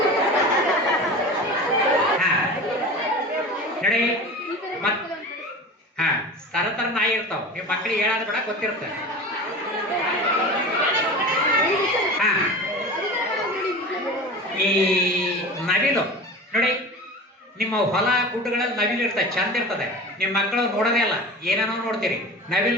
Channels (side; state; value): both; normal; correlation 0.34